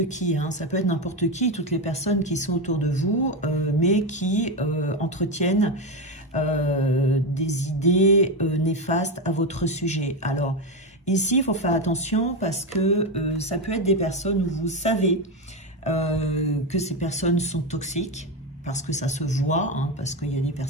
qui, hein, ça peut être n'importe qui, toutes les personnes qui sont autour de vous, mais qui entretiennent des idées néfastes à votre sujet. Alors, ici, il faut faire attention parce que ça peut être des personnes où vous savez que ces personnes sont toxiques, parce que ça se voit, hein, parce qu'il y a des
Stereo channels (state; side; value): normal; both; correlation 0.12